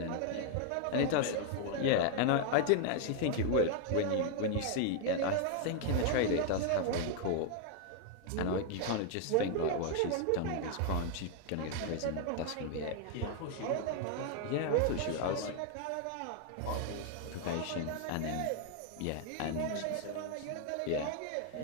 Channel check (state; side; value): different; both; correlation 0.00